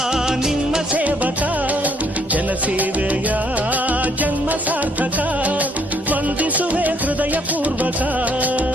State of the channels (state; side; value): normal; both; correlation 0.67